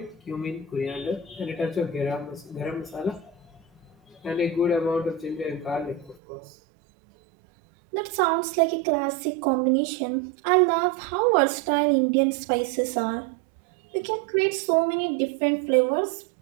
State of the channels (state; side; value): drops out; left; at 6.2 s